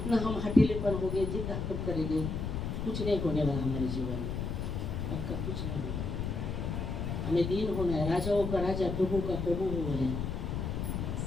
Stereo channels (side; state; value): left; noise; rumble, 3 dB below the sound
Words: हम हठीलेपन हो गए, जितना हम करेंगे, कुछ नहीं होने वाला हमारे जीवन में, पक्का कुछ नहीं होगा. हमें दीन होना है, राजाओं का राजा, प्रभु का प्रभु वो है.